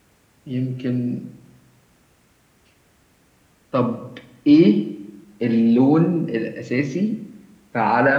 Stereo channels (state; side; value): identical; both; correlation 1.00